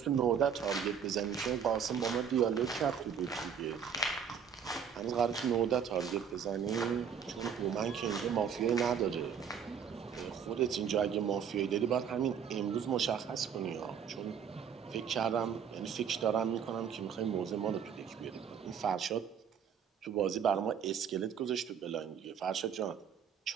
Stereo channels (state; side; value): quieter; left; 7.6 dB